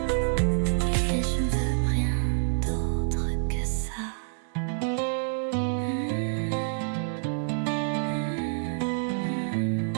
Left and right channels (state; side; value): silent; left; 60 dB below the other